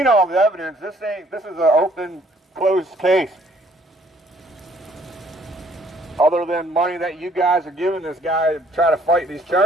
all the evidence. This is an open, closed case. Other than money that you guys are giving this guy to try to fight these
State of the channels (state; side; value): normal; both; correlation 0.61